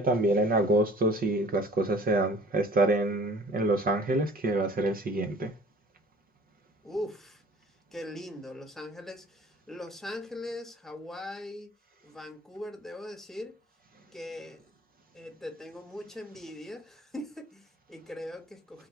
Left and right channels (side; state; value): both; normal; correlation 0.49